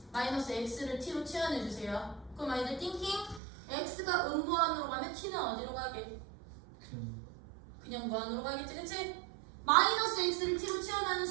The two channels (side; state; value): left; drops out; at 3.4 s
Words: 마이너스 x를 t로 치환해주세요. 그럼 아이들 띵킹 x가 음무한으로 가면 t는 어디로 가게? 그냥 무한으로 가겠지, 그치? 마이너스 x를 t로 치환하는